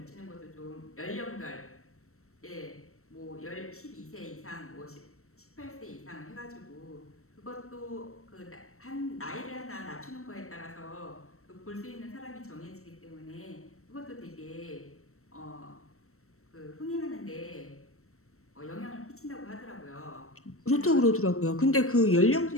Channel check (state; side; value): late; right; 0.63 ms